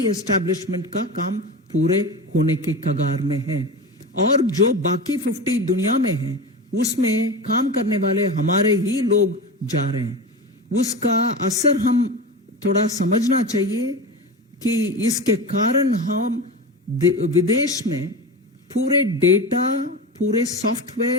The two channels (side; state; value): both; normal; correlation 0.26